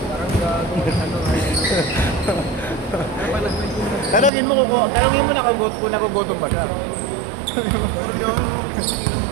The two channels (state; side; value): drops out; left; at 4.3 s